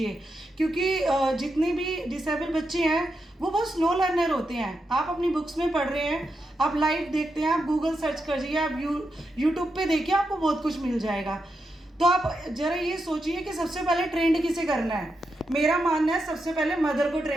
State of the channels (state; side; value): normal; both; correlation 0.86